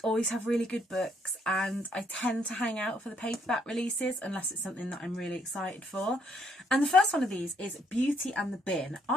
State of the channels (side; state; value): both; normal; correlation 0.70